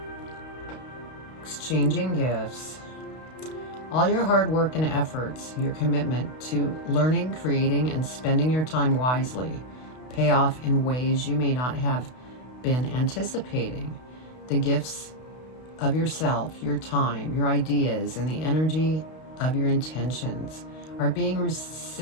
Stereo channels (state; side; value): late; right; 32 ms